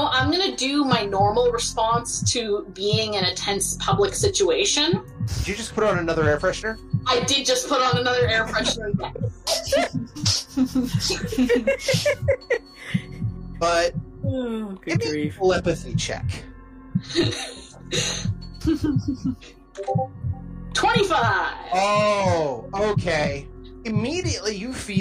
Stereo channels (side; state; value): both; identical; correlation 1.00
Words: going to do my normal response to being in a tense public situation. Did you just put on another air freshener? I did just put on another air freshener. But good grief. Telepathy check. 25! Oh, okay. Immediately you